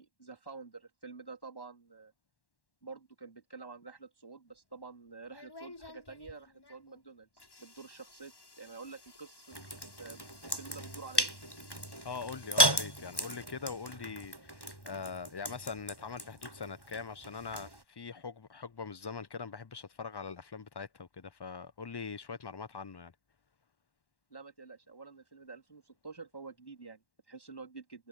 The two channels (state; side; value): late; right; 1.1 ms